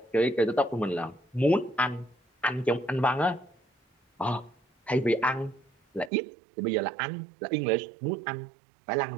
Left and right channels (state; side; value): drops out; left; at 6.1 s